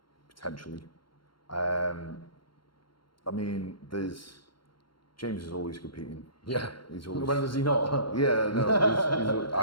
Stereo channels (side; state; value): right; late; 0.73 ms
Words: potentially. I mean, James is always competing. Yeah. He's always... When does he not? Yeah, no,